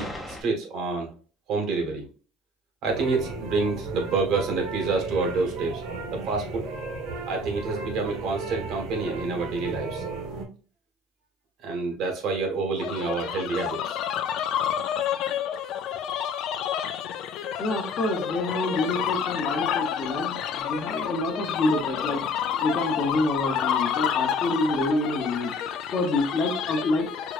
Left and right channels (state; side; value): normal; both; correlation 0.50